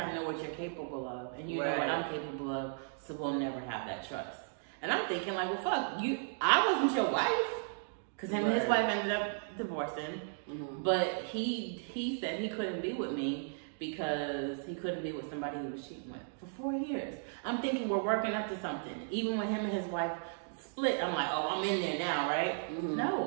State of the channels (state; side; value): silent; left; digital silence